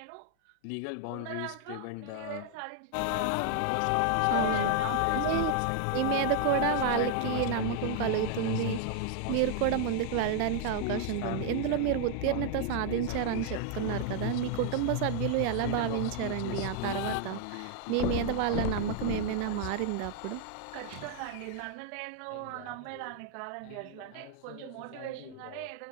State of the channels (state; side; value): different; both; correlation 0.00